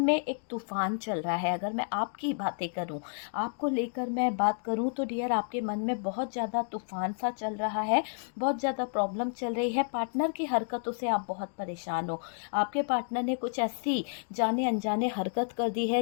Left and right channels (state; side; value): silent; right; 57 dB below the other